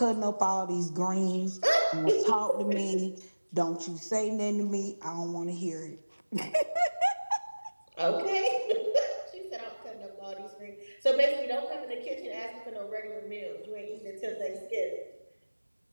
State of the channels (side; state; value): both; inverted; correlation -1.00